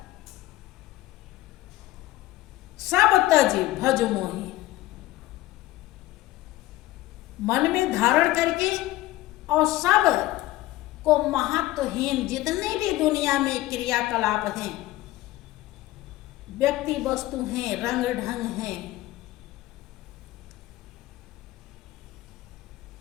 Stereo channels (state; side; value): quieter; right; 16.7 dB